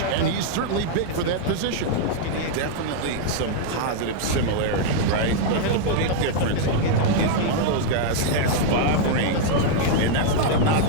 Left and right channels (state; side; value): different; both; correlation 0.00